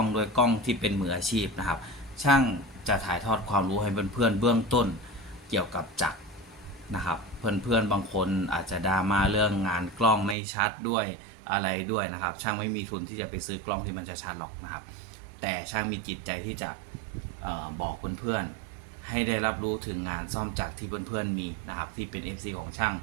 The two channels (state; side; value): drops out; left; at 10.4 s